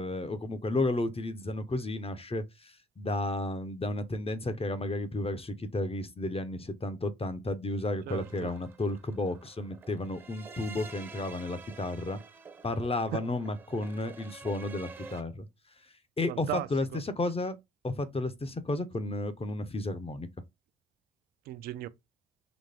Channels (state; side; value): normal; both; correlation 0.61